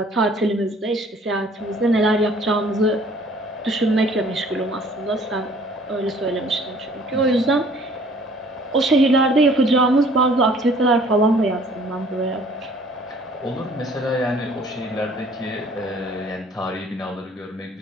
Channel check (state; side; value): normal; both; correlation 0.55